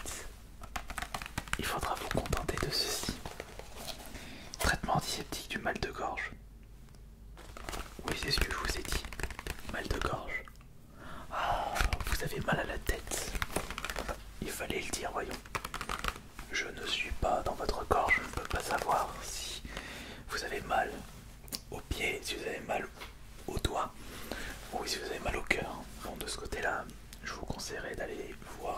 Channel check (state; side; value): identical; both; correlation 1.00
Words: il faudra vous contenter de ceci. Traitement antiseptique du mal de gorge. Oui, c'est ce que je vous ai dit. Mal de gorge. Ah, vous avez mal à la tête. Il fallait le dire, voyons. Je ne suis pas dans votre corps, je ne peux pas savoir si vous avez mal aux pieds, si vous avez mal aux doigts, ou si vous avez mal au cœur. Bon, de ce côté-là, je vous conseillerais d'aller